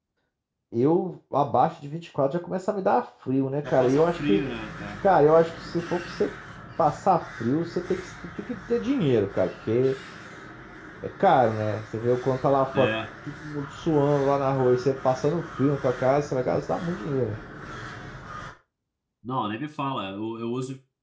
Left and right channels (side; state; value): both; identical; correlation 1.00